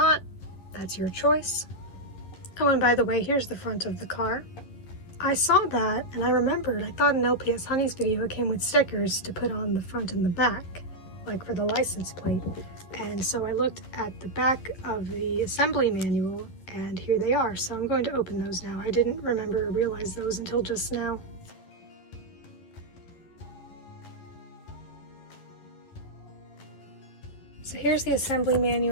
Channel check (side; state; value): right; late; 11 ms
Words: that's your choice. Oh, and by the way, here's the front of the car. I saw that, and I remembered, I thought in LPS Honey's video it came with stickers to put on the front and the back, like for the license plate. And so I looked at the back of the assembly manual, and here they are. So I'm going to open those now. I didn't remember or realize those until just now. So here's the assembly